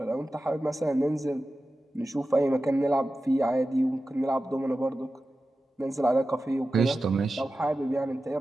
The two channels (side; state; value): both; normal; correlation 0.93